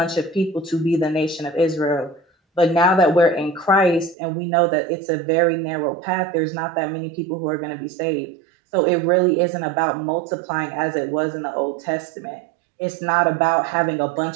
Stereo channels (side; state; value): left; drops out; at 4.2 s